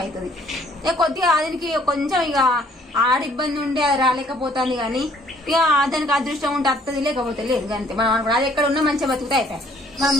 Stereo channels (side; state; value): both; normal; correlation 0.61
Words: అవుతుంది. ఇక కొద్దిగా దానికి కొంచెం ఇక ఆడ ఇబ్బంది ఉండి అది రాలేకపోతుంది కానీ ఇక దానికి అదృష్టం ఉంటే వస్తుంది, లేకపోతే లేదు అంతే. మనం అది ఎక్కడ ఉన్నా మంచిగా బతుకుతా అయిపోయాయి.